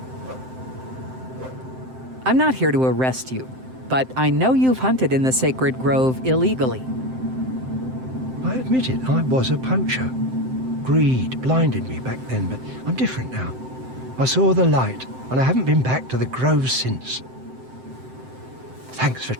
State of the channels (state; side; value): late; left; 7.7 ms